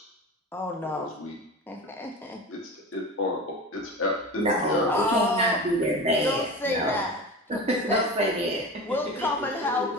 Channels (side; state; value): both; normal; correlation 0.30